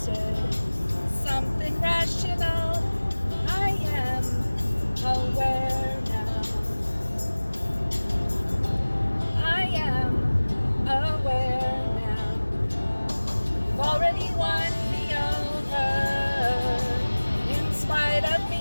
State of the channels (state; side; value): inverted; both; correlation -1.00